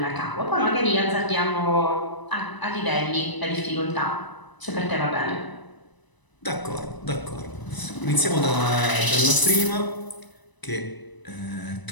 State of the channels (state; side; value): late; right; 1.0 ms